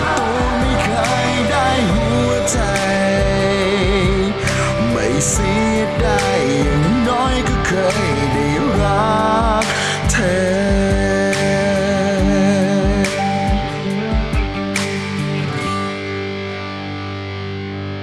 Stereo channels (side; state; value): both; identical; correlation 1.00